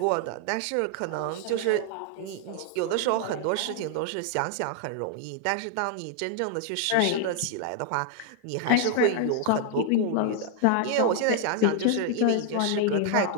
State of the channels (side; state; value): both; different; correlation 0.00